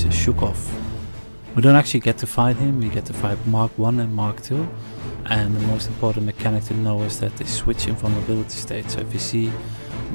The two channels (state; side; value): inverted; both; correlation -1.00